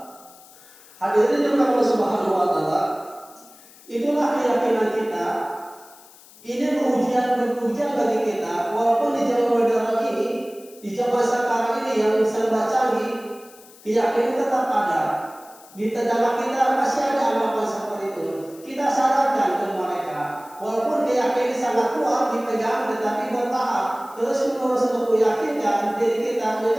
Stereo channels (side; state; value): left; noise; hiss, 23 dB below the sound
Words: Hadirin yang Allah Subhanahu wa Ta'ala, itulah keyakinan kita. Ini ujian bagi kita, walaupun di zaman modern ini, di zaman sekarang ini yang serba canggih, keyakinan tetap ada. Di dalam kita masih ada anggapan seperti itu. kita sarankan ke mereka, walaupun keyakinan sangat kuat dipegang, tetapi bertahap terus menerus untuk meyakinkan diri kita,